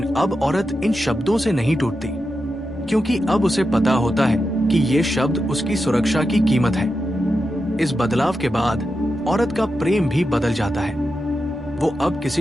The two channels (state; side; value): normal; both; correlation 0.89